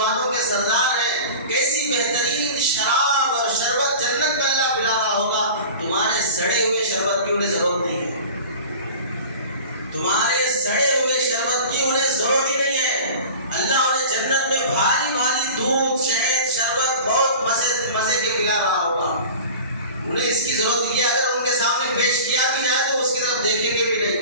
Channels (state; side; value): inverted; both; correlation -0.38